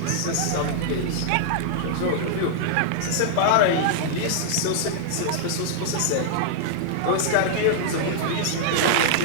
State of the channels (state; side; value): different; both; correlation -0.01